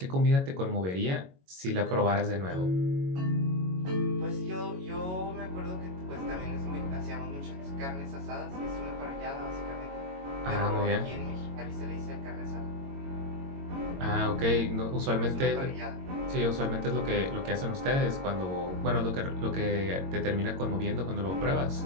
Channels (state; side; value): late; left; 22 ms